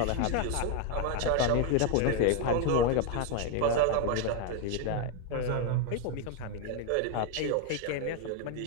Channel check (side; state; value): both; different; correlation 0.01